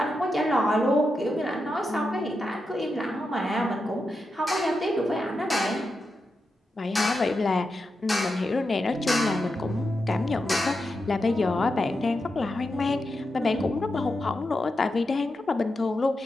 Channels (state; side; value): normal; both; correlation 0.88